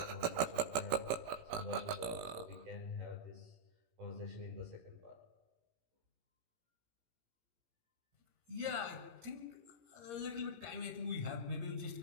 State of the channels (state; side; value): late; left; 18 ms